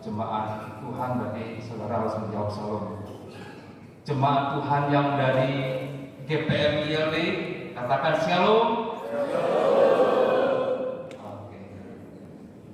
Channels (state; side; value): identical; both; correlation 1.00